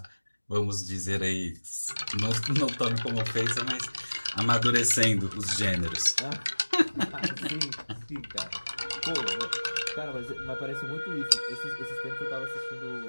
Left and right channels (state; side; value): inverted; both; correlation -1.00